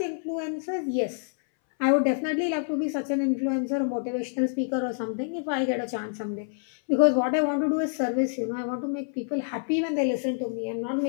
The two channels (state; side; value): silent; right; 60 dB below the other